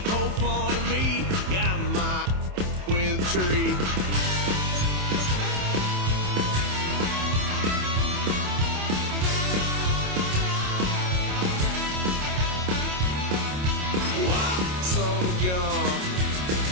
poked fun at me, got my with a tree. Why, son of a gun,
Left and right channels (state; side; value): late; left; 27 ms